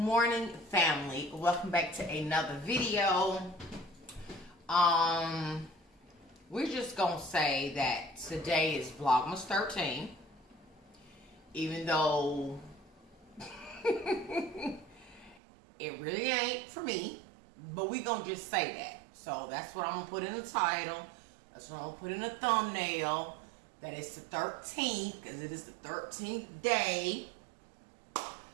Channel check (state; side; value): drops out; left; at 15.4 s